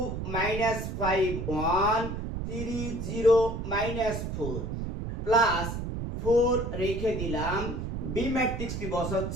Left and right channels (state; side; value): noise; right; rumble, 4 dB below the sound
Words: -5, 1, 3, 0, -4 প্লাস 4 রেখে দিলাম। বি ম্যাট্রিক্সটি